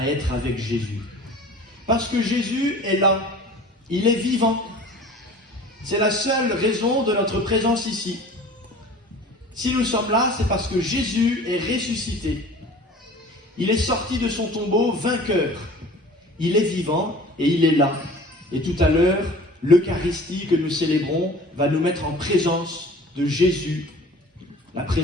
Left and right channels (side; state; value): both; normal; correlation 0.44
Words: être avec Jésus. Parce que Jésus est là, il est vivant. C'est la seule raison de notre présence ici. Si nous sommes là, c'est parce que Jésus est ressuscité. Il est sorti de son tombeau vainqueur. Il est vivant et il est là. Et tout à l'heure, l'Eucharistie que nous célébrons va nous mettre en présence de Jésus. La